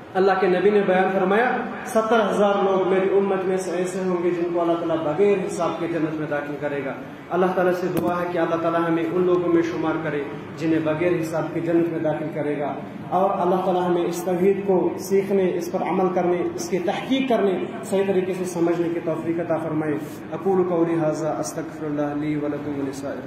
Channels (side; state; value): both; identical; correlation 1.00